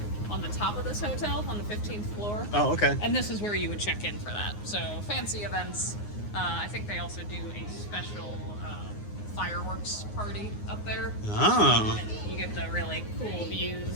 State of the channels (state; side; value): late; right; 9.6 ms